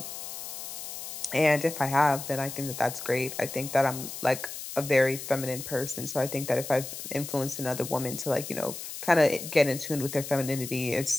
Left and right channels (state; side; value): noise; left; hiss, 9 dB below the sound